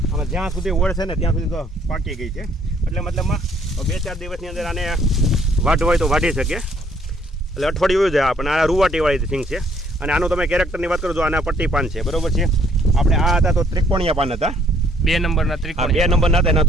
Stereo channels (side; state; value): both; normal; correlation 0.65